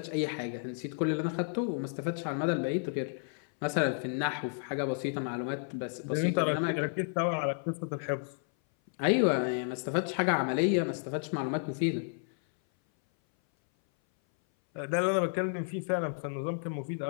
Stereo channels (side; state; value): right; silent; 57 dB below the other